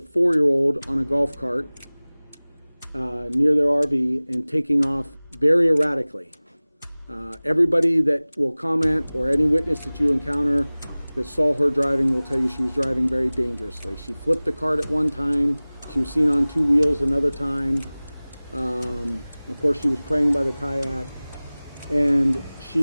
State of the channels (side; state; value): both; inverted; correlation -0.99